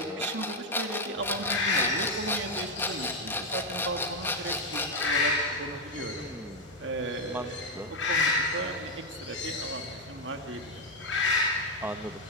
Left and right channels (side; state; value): both; normal; correlation 0.03